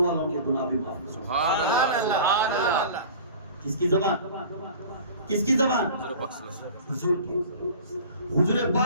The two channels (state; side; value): inverted; both; correlation -0.41